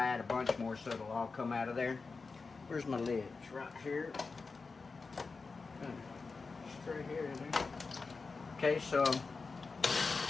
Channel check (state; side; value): quieter; right; 4.4 dB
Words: a bunch more so it'll all come out of there. Where's my lid? It's right here. Straight here in there. Okay, so